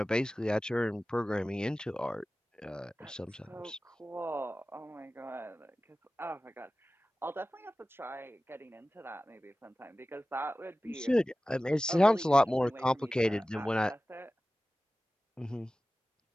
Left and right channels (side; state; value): both; normal; correlation 0.96